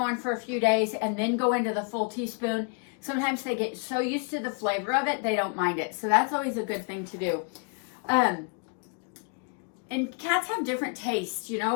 for a few days and then go into the full teaspoon, sometimes they get so used to the flavor of it they don't mind it. So that's always a good thing to do. And cats have different tastes,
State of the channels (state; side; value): quieter; right; 39.4 dB